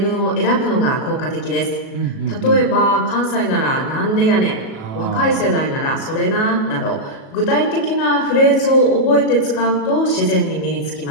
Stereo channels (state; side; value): late; right; 37 ms